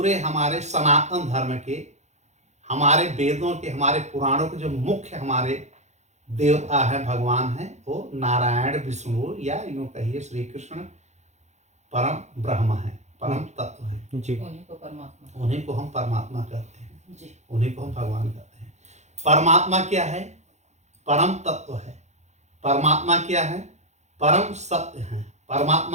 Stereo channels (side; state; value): left; late; 0.33 ms